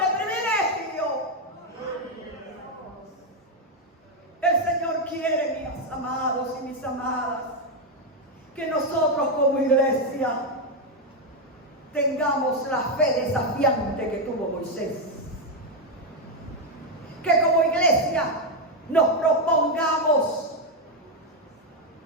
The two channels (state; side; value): normal; both; correlation 0.04